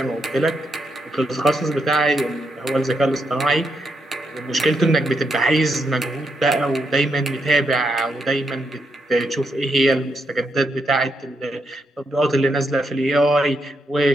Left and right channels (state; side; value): normal; both; correlation 0.81